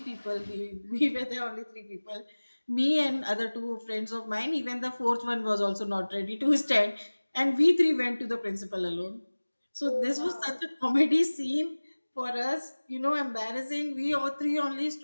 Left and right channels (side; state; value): both; inverted; correlation -1.00